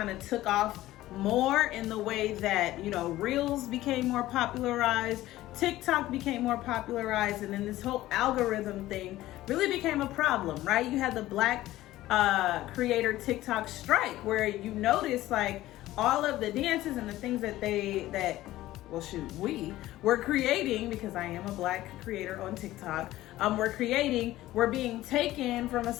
of took off more in the way that, Reels became more popularized, TikTok became more popularized, and then this whole algorithm thing really became a problem, right? You had the Black creator TikTok strike, where you notice like all of the dances and the things that we were creating, because I am a Black creator on TikTok, we're being taken from a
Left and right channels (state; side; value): quieter; right; 15.7 dB